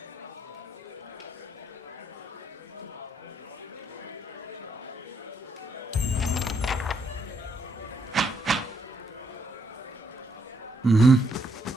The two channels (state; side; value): normal; both; correlation 0.74